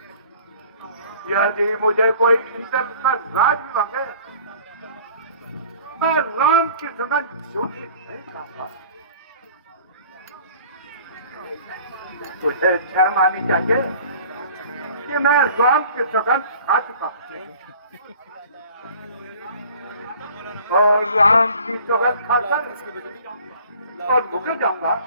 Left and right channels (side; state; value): both; inverted; correlation -0.49